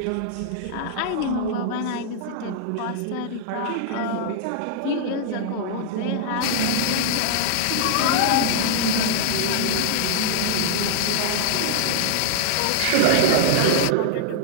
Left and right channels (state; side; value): different; both; correlation -0.01